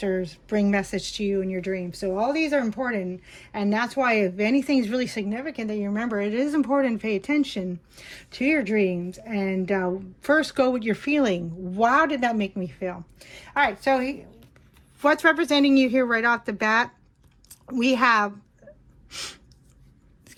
bring message to you in your dreams. So all these are important, and that's why if anything is really significant that you remember, it is important to pay attention to your dreams, and first go with your feeling. Wow, did that make me feel? All right, so what's representing you here right off the bat? We have,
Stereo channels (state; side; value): identical; both; correlation 1.00